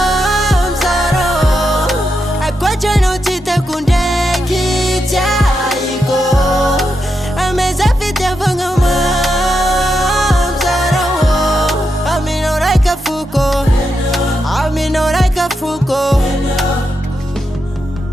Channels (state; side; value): normal; both; correlation 0.85